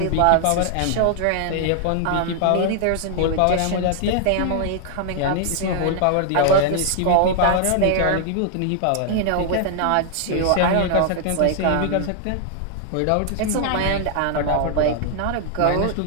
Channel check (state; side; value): different; both; correlation 0.00